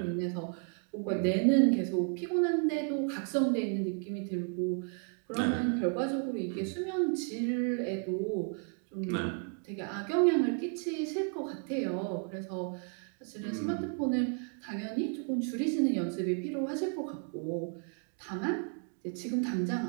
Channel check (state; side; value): quieter; left; 38.6 dB